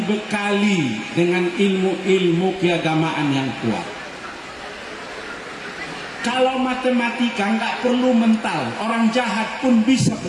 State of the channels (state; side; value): identical; both; correlation 1.00